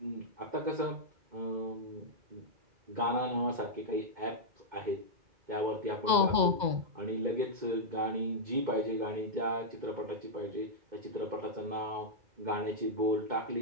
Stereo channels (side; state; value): left; late; 2.0 ms